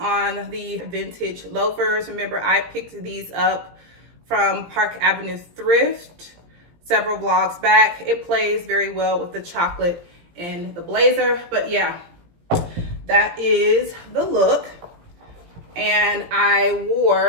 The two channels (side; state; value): left; late; 17 ms